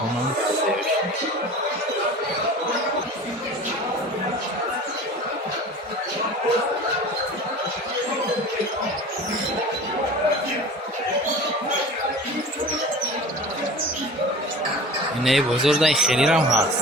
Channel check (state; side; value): normal; both; correlation 0.38